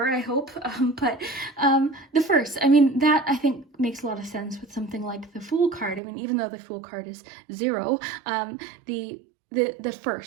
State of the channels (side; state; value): left; drops out; at 6.0 s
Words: I hope. But the 1st, I mean, that I think makes a lot of sense with something like the Fool card. I mean, even though the Fool card is 0, the